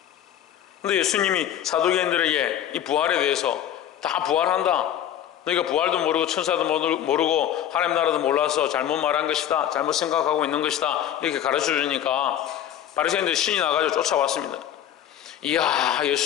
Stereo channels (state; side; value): quieter; right; 10.7 dB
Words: 그런데 예수님이 사두개인들에게 이 부활에 대해서 다 부활한다, 너희가 부활도 모르고 천사도 모르고 하나님 나라도 몰라서 잘못 말한 것이다, 잘못 생각하고 있는 것이다, 이렇게 가르쳐 주니까 바리새인들이 신이 나가지고 쫓아왔습니다. 이야,